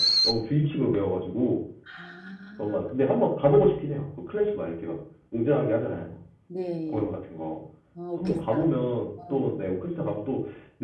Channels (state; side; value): identical; both; correlation 1.00